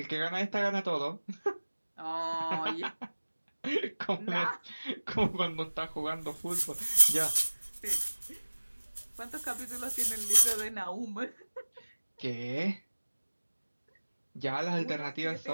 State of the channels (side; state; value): both; inverted; correlation -1.00